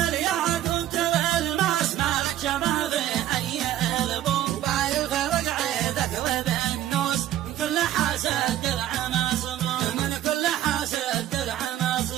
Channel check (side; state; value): left; quieter; 12.6 dB